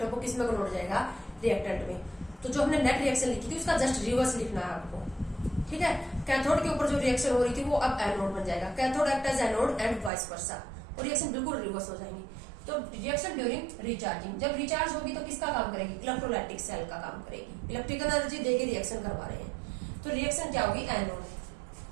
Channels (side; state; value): left; drops out; at 10.1 s